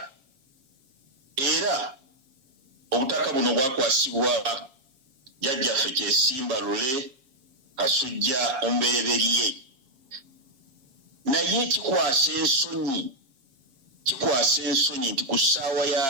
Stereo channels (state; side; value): late; left; 7.3 ms